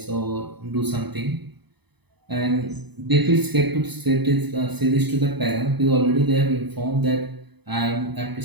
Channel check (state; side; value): late; left; 0.99 ms